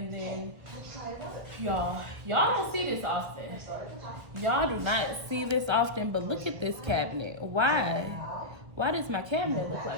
then y'all don't see this often. Y'all do not see this often, but look at this cabinet. Why does my cabinet look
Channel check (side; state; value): left; late; 1.7 ms